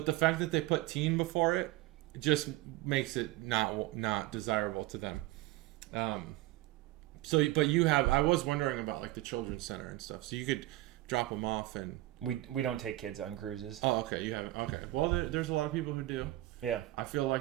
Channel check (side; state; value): left; quieter; 17.3 dB